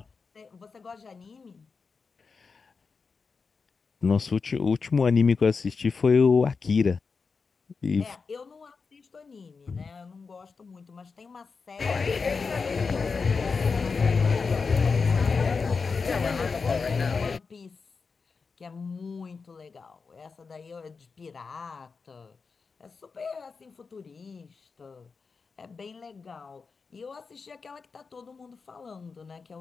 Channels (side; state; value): right; quieter; 4.9 dB